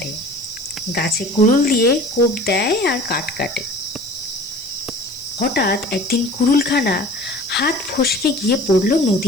গাছে কুড়ুল দিয়ে কোপ দেয় আর কাঠ কাটে। হঠাৎ একদিন কুড়ুলখানা হাত ফসকে গিয়ে পড়ল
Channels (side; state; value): right; noise; hiss, 20 dB below the sound